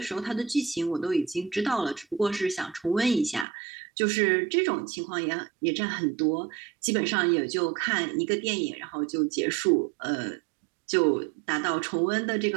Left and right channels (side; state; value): left; drops out; at 3.5 s